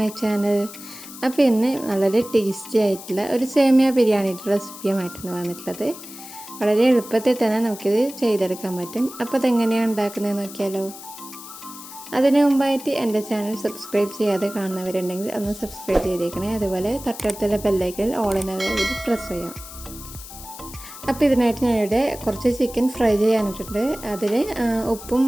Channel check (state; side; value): noise; left; hiss, 14 dB below the sound